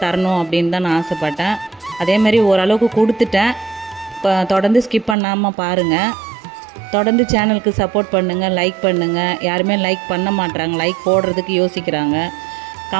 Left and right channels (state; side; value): drops out; left; at 5.2 s